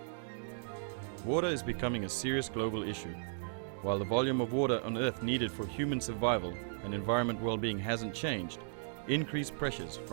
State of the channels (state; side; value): silent; left; digital silence